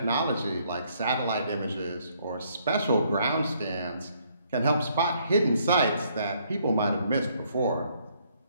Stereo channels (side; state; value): both; inverted; correlation -0.68